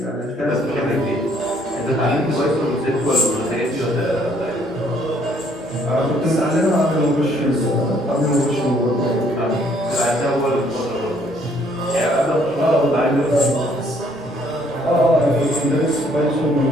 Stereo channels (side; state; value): both; normal; correlation 0.64